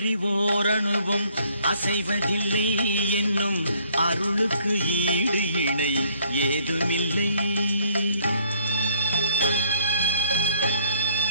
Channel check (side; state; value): both; inverted; correlation -0.63